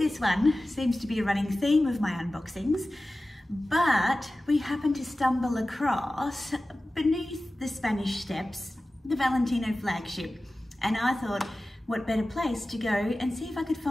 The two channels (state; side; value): normal; both; correlation 0.96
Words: one, seems to be a running theme of my unboxings, but we happened to stumble across beneath the Spanish Steps, the Valentino Flagship, and I thought, what better place to go and see if I could